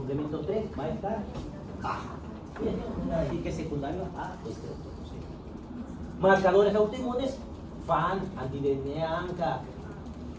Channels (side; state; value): both; identical; correlation 1.00